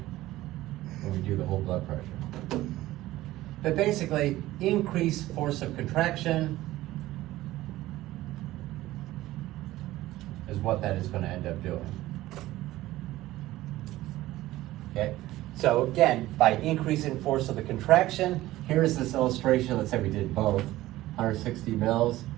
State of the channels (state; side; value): quieter; left; 16.3 dB